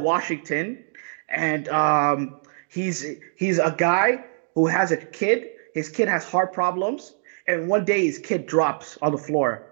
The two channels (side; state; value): left; silent; digital silence